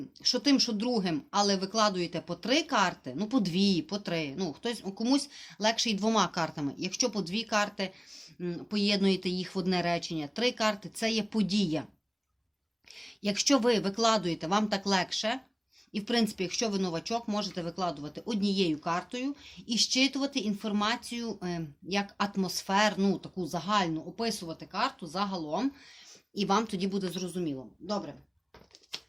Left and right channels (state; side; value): identical; both; correlation 1.00